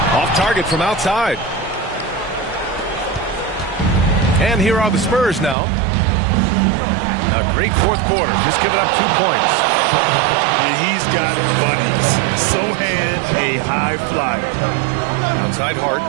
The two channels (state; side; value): drops out; left; at 5.6 s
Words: Off target from outside. And here are the Spurs now. A great fourth quarter, just giving up 2 points. And he's got bunnies. Sohan, a high flyer. Outside Hart.